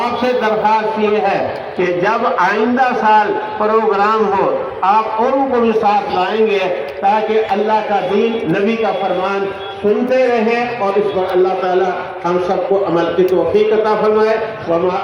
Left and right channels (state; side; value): identical; both; correlation 1.00